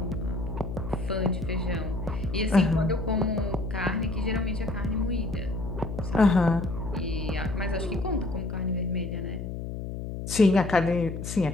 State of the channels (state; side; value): noise; left; hum, 6 dB below the sound